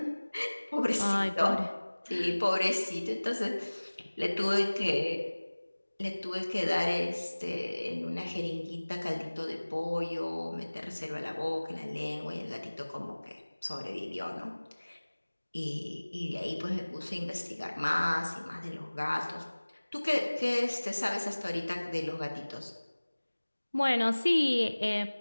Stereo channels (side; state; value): both; inverted; correlation -1.00